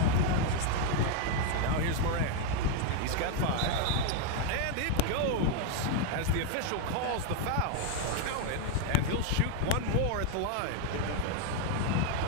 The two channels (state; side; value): different; both; correlation 0.01